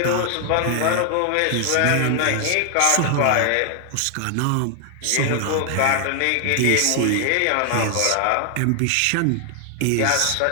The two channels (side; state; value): both; different; correlation 0.00